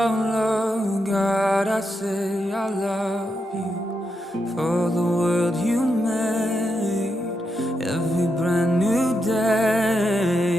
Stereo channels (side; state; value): both; normal; correlation 0.84